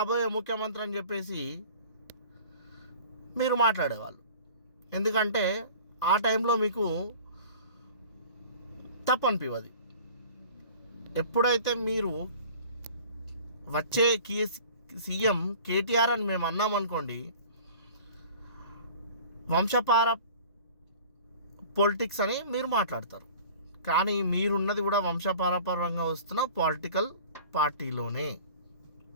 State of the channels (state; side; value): inverted; both; correlation -0.45